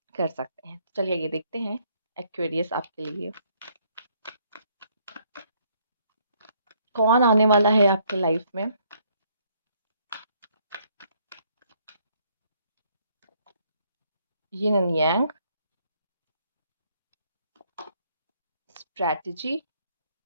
कर सकते हैं। चलिए ये देखते हैं एक्वेरियस आपके लिए कौन आने वाला है आपके लाइफ में। Yin and yang, strategy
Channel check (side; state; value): both; inverted; correlation -0.68